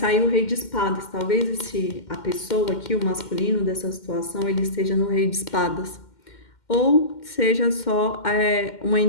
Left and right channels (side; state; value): right; late; 2.1 ms